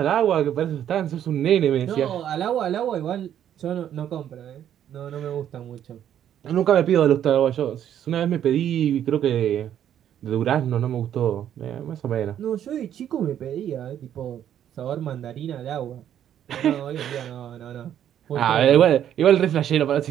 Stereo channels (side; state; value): left; quieter; 10.3 dB